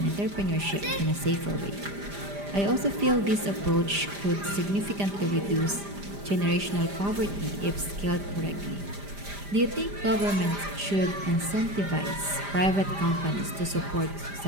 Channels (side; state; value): left; late; 5.0 ms